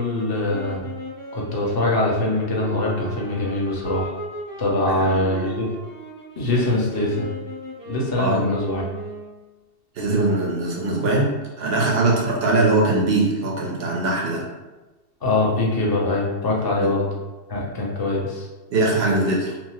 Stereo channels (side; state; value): left; late; 2.7 ms